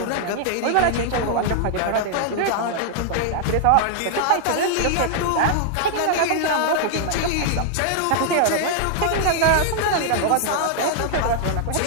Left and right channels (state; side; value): different; both; correlation -0.01